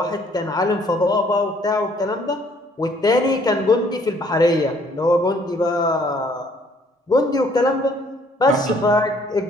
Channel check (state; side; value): normal; both; correlation 0.62